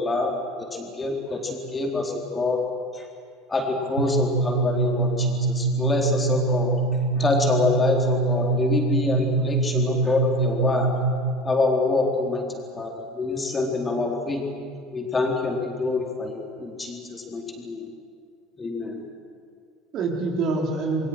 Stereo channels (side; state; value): both; normal; correlation 0.36